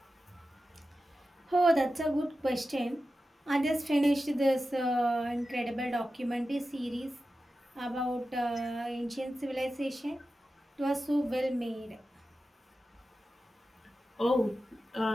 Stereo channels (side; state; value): both; normal; correlation 0.93